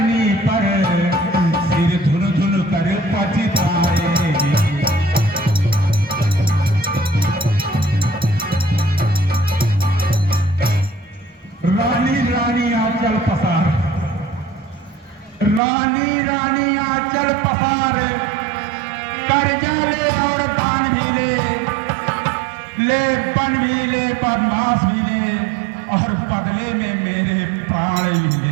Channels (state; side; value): drops out; left; at 15.6 s